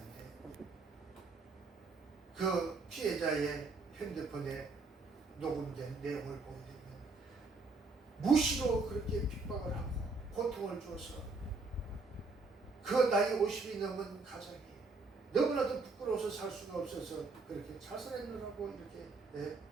그 피해자의 핸드폰에 녹음된 내용을 보게 되면 무시로 그렇게 핍박을 하고 고통을 줘서 그 나이 50이 넘은 가장이 너무나도 부끄러워서 살 수가 없어서 그렇게 자살했느라고 이렇게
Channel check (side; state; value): left; quieter; 3.8 dB